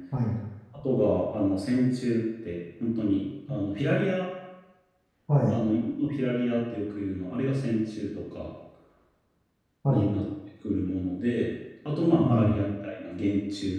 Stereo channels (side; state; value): both; identical; correlation 1.00